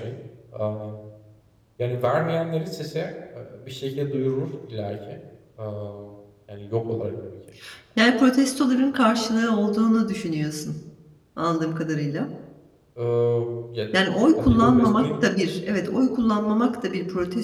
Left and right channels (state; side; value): identical; both; correlation 1.00